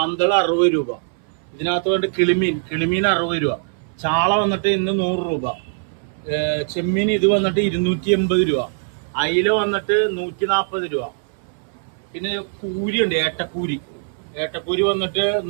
60 രൂപ. ഇതിനകത്ത് വേണ്ട കിളിമീൻ 60 രൂപ, ചാള വന്നിട്ട് ഇന്ന് 100 രൂപ, ചെമ്മീൻ ഇത് വന്നിട്ട് 280 രൂപ, അയില വന്നിട്ട് 140 രൂപ. പിന്നെ കൂരി ഉണ്ട്, ഏട്ടക്കൂരി വന്നിട്ട്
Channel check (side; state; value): left; silent; 60 dB below the other